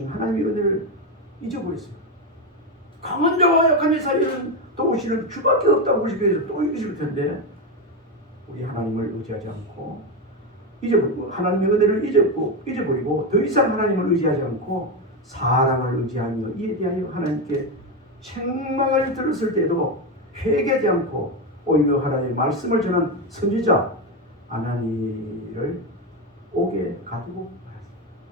하나님의 은혜를 잊어버렸어요. 강한 자와 약한 자 사이에는 도우시는 주밖에 없다고 그러시면서 또 이러실 텐데 우리 하나님을 의지하지 않고 잊어버리고 하나님의 은혜를 잊어버리고 더 이상 하나님을 의지하지 않고 사람을 의지하며 이에 대하여 하나님께 책망을 들었을 때도 회개하지 않고 오히려 하나님의 말씀을 전한 선지자 아나니를 옥에 가두고 말았습니다.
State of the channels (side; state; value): both; normal; correlation 0.11